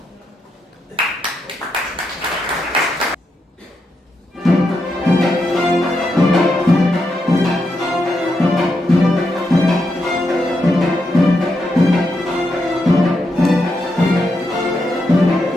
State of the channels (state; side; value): normal; both; correlation 0.83